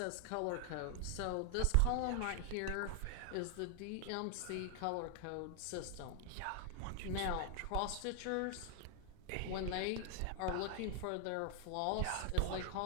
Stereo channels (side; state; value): both; different; correlation 0.00